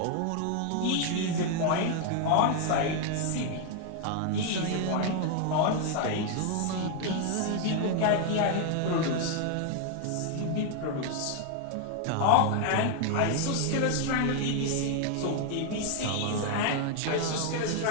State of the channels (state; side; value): different; both; correlation 0.00